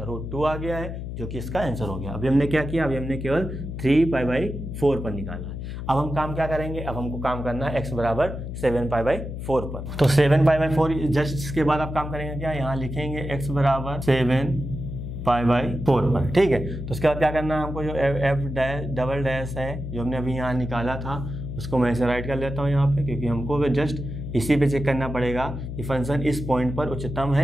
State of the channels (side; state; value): left; noise; hum, 7 dB below the sound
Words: √2 आ गया है, जो कि इसका आंसर हो गया। अभी हमने क्या किया, अभी हमने केवल 3π/4 पर निकाला है। अब हम काम क्या करेंगे, अब हमको काम करना है x बराबर 7π/4 पर। तो 7π/4 जस्ट इसके बाद आप काम करेंगे क्या, यहाँ लिखेंगे x बराबर 7π/4 पर, ठीक है। तो उसके बाद क्या करना है हमको, जो f डबल डैश है जो हमने अभी यहाँ निकाला था उसको मैं इसे राइट कर लेता हूँ यहाँ पे, क्योंकि हमको जस्ट इसी पे चेक करना पड़ेगा कि फंक्शन इस पॉइंट पर उच्चतम